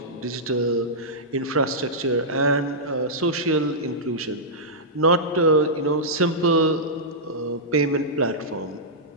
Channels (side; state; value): both; normal; correlation -0.13